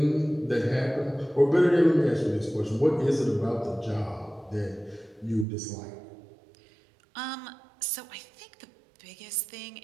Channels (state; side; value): drops out; left; at 5.5 s